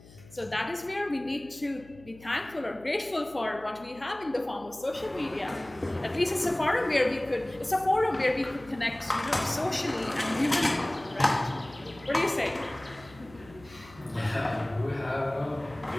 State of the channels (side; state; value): left; noise; hum, 22 dB below the sound